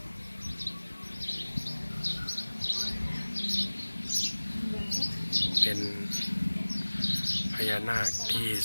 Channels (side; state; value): both; inverted; correlation -1.00